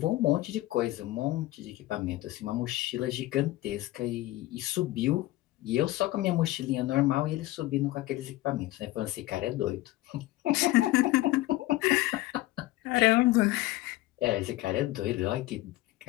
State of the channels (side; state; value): right; quieter; 17.6 dB